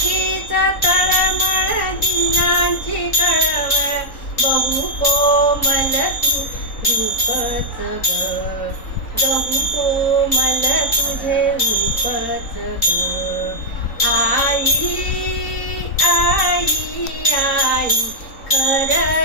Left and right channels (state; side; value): late; right; 3.9 ms